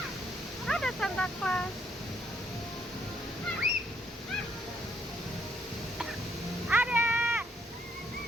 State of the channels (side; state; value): both; normal; correlation 0.70